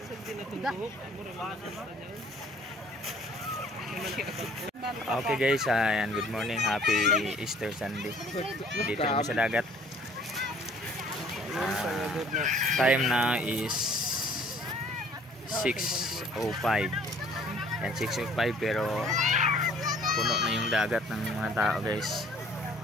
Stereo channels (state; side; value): normal; both; correlation 0.55